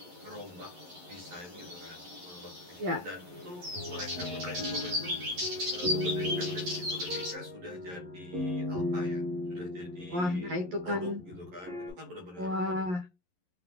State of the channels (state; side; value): late; left; 11 ms